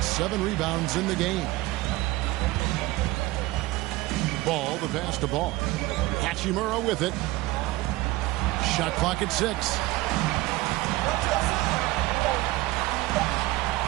7 rebounds in the game. Ball, the pass to Ball. Hachimura with it. Shot clock at 6.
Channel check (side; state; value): left; quieter; 19.0 dB